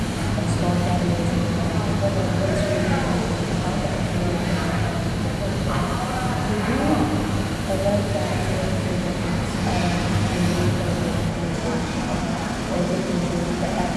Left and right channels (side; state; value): both; identical; correlation 1.00